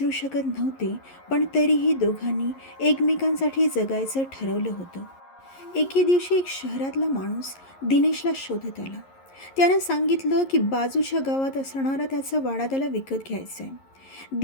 शकत नव्हते, पण तरीही दोघांनी एकमेकांसाठी जगायचं ठरवलं होतं. एके दिवशी एक शहरातला माणूस दिनेशला शोधत आला. त्यानं सांगितलं की बाजूच्या गावात असणारा त्याचा वाडा त्याला विकत घ्यायचा आहे.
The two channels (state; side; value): late; right; 11 ms